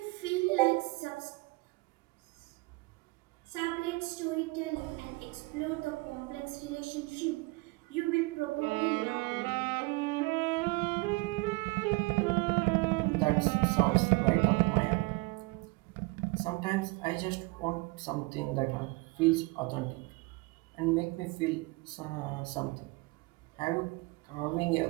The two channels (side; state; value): left; quieter; 24.8 dB